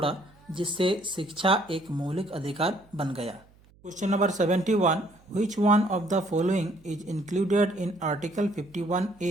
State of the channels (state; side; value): noise; right; hum, 28 dB below the sound